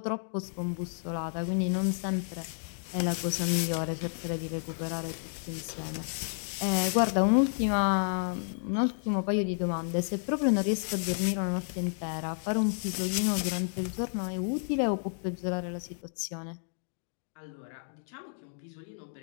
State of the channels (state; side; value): silent; right; 57 dB below the other